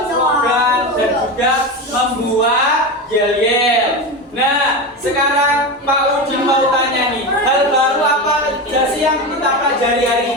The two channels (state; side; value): normal; both; correlation 0.20